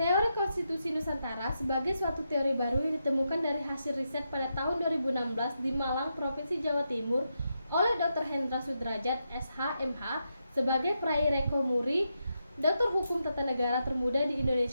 konstitusi Nusantara sebagai suatu teori baru yang ditemukan dari hasil riset pada tahun 2016 di Malang, Provinsi Jawa Timur oleh Dr. Hendra Sudrajat, SH.MH, sebagai peraih Reko Muri, Doktor Hukum Tata Negara termuda di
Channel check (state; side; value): inverted; both; correlation -0.84